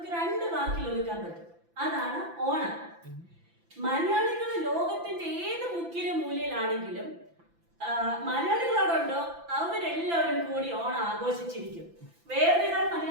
2 വാക്കിൽ ഒതുക്കാൻ പറ്റും. അതാണ് ഓണം. മലയാളികൾ ലോകത്തിന്റെ ഏത് മുക്കിലും മൂലയിലാണെങ്കിലും മലയാളികളോടുണ്ടോ അവരെല്ലാവരും കൂടി Onam ആഘോഷിച്ചിരിക്കും. Where there are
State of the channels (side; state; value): left; late; 5.9 ms